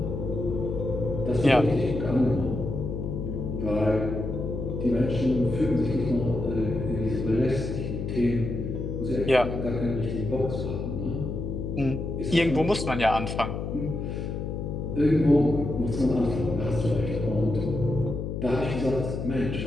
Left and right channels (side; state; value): left; noise; hum, 4 dB below the sound